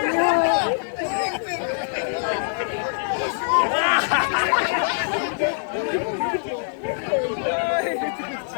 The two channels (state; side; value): silent; right; digital silence